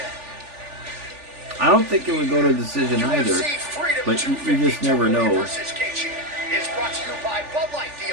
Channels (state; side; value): late; left; 3.4 ms